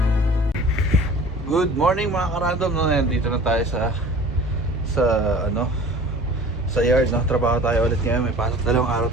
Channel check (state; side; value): normal; both; correlation 0.44